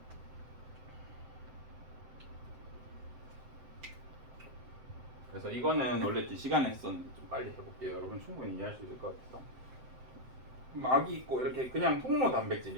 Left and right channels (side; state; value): left; late; 7.8 ms